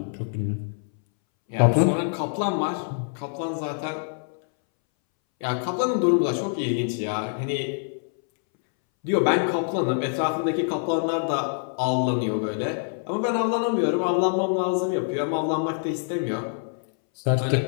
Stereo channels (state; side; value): silent; right; 62 dB below the other